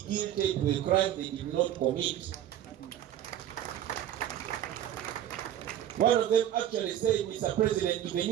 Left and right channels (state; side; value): quieter; left; 11.4 dB